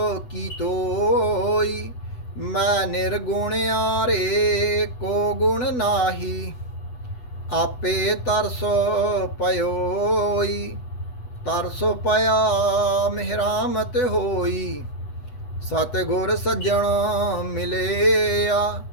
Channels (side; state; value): right; late; 8.1 ms